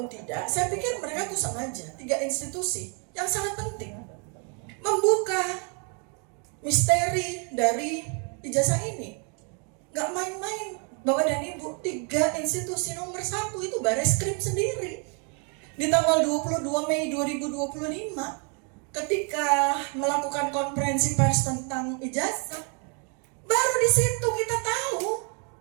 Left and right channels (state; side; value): quieter; left; 37.6 dB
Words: tidak, saya pikir mereka tuh sengaja, 3 institusi yang sangat penting membuka misteri dari ijazah ini. Gak main-main Bapak dan Ibu, 3 institusi nomor 1 itu Bareskrim sendiri. Di tanggal 22 Mei 2025 ketika melakukan konferensi pers tentang ijazah, baru di situ kita tahu